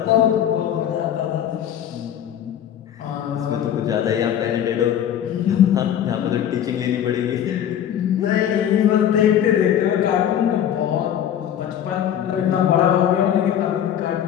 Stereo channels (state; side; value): quieter; right; 10.0 dB